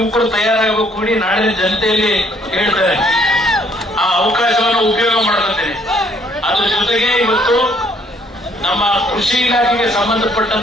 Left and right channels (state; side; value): normal; both; correlation 0.65